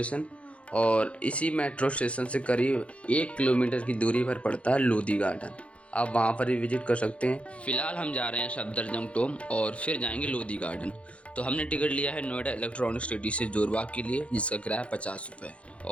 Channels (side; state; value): right; late; 0.062 ms